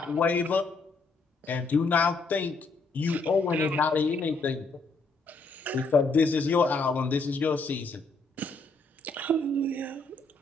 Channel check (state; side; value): quieter; right; 3.5 dB